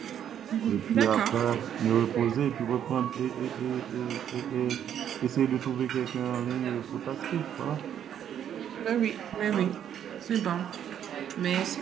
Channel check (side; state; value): left; quieter; 9.6 dB